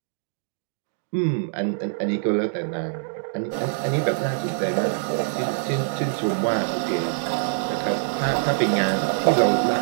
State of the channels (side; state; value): left; silent; digital silence